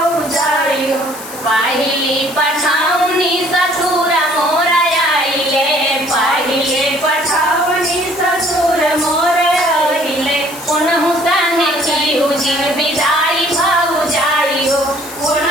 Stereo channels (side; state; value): left; noise; hiss, 13 dB below the sound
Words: हो पहली पठाउनी ससुर मोर आइले पहले पठाउनी ससुर मोर आइले उनहु संगे चीहु जिन विदाई भौजाई हो